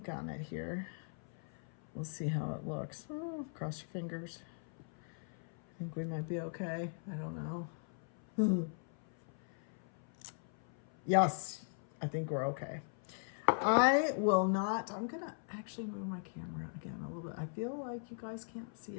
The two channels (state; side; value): silent; right; 52 dB below the other